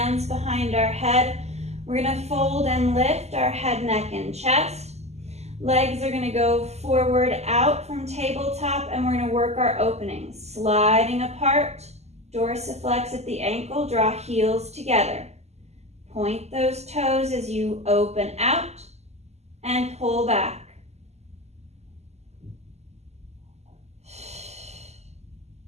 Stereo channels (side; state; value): left; late; 0.32 ms